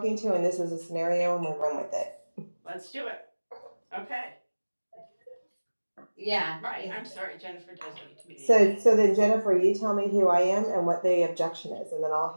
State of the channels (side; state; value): both; inverted; correlation -1.00